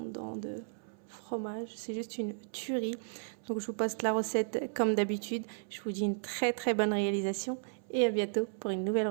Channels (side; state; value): left; silent; 55 dB below the other